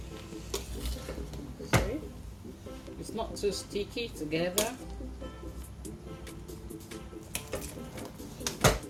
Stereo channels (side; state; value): both; identical; correlation 1.00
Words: See? It's not too sticky together.